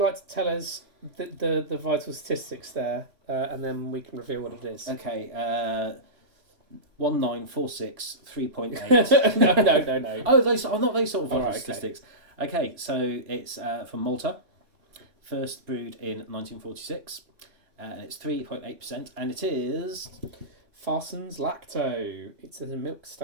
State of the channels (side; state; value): left; late; 3.5 ms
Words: to tell us the vital statistics there, and then we can reveal what it is? Okay, 1946, 3.8. No. Oh, those are not those sort of vital Alright, okay. statistics. Okay, so it's from Malta, first brewed in 1946. It's 3.8%, and it is Farsons Lacto. It's a milk